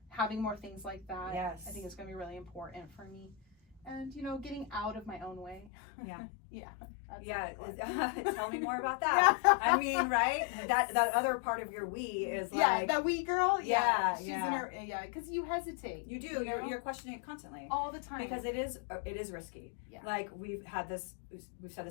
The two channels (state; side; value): drops out; right; at 5.7 s